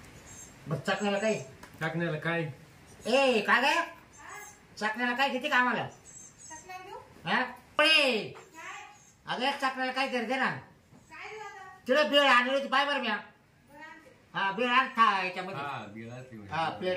मग चकण्याला काही टाकण्याला काय ए काय काय चकण्याला काय किती कामाला चकल्या देऊ? हा पळे काय? अगं चकण्याला काय तरी दे ना. काय देऊ आता? तिला बेळ आणली होती पाय बरं म्या. बरं आणते. हा बेळ आण था याच्यामध्ये. हा बिळा ते हा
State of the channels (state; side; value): identical; both; correlation 1.00